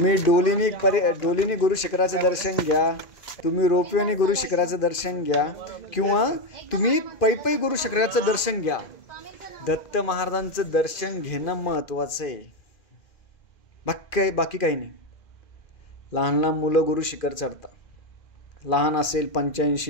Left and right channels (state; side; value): late; right; 2.5 ms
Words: डोलीनी गुरु शिखराचं दर्शन घ्या, तुम्ही रोपवेने गुरु शिखराचं दर्शन घ्या, किंवा तुम्ही पै गुरु शिखराचं दर्शन घ्या. दत्त महाराजांचं दर्शन घेणं महत्त्वाचं आहे. बाकी काही नाही. लहान लहान मुलं गुरु शिखर चढतात. लहान असेल,